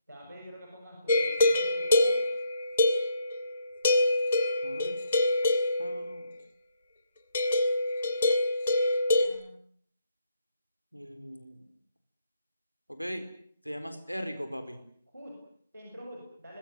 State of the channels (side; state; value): both; inverted; correlation -0.75